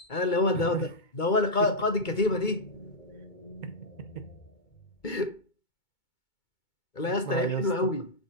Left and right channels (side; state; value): right; late; 2.2 ms